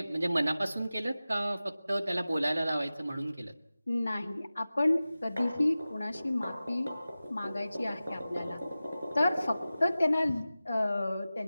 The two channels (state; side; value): inverted; both; correlation -0.96